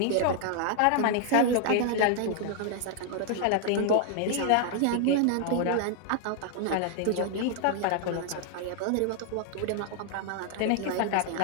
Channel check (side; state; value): both; different; correlation 0.00